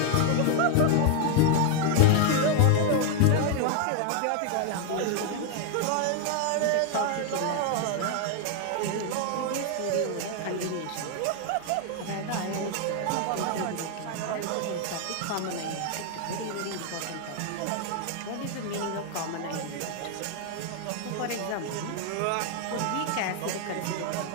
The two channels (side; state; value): both; different; correlation 0.01